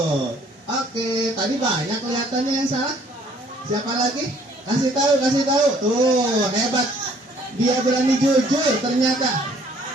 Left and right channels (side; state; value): both; normal; correlation 0.60